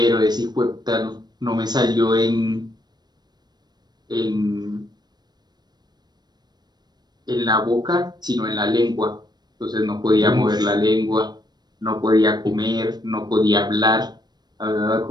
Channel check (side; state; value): left; late; 0.20 ms